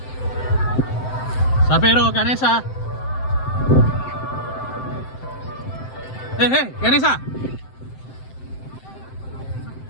Sapero Ganesha. Ganesha.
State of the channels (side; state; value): right; late; 7.8 ms